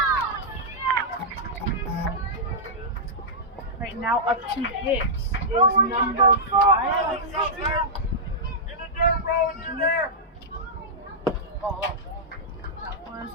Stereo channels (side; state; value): both; normal; correlation -0.11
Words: Right now, up to hits is number 5. That was a ball.